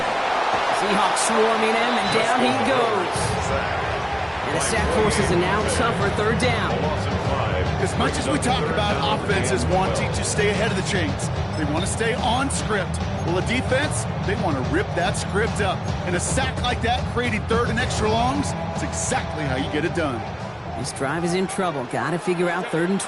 Seahawks swarming him, and down he goes. And the sack forces a now tougher third down. As much as we talk about offenses wanting to stay ahead of the chains, they want to stay on script. Well, a defense, they want to rip that script up. And a sack like that, creating third and extra longs, it's exactly how you get it done. This drive is in trouble. Got to figure out third and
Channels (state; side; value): identical; both; correlation 1.00